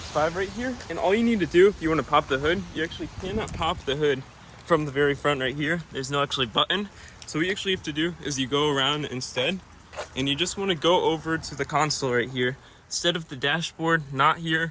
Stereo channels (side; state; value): both; identical; correlation 1.00